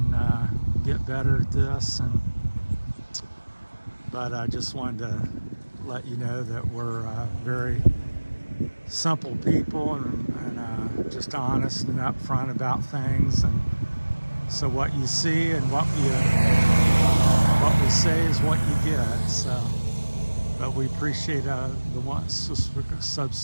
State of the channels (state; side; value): inverted; both; correlation -1.00